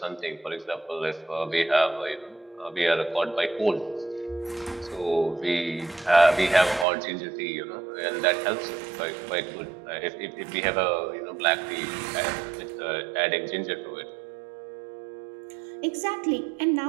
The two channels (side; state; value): left; drops out; at 6.9 s